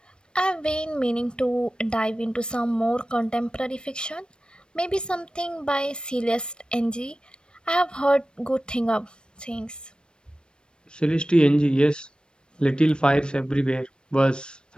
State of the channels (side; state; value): right; late; 0.053 ms